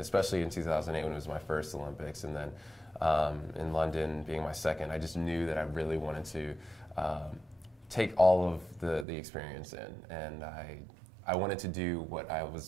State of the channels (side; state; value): left; drops out; at 9.1 s